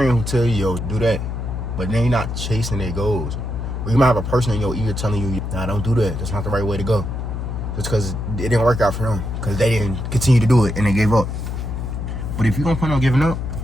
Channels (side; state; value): left; noise; hum, 4 dB below the sound